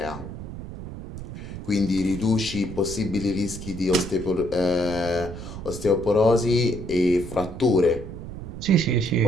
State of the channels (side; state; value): right; noise; rumble, 10 dB below the sound